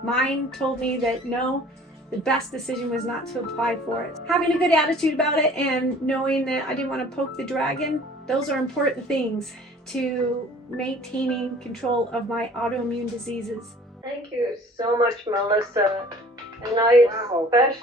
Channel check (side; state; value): both; normal; correlation 0.50